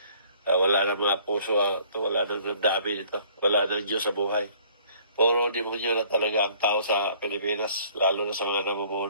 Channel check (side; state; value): both; inverted; correlation -0.57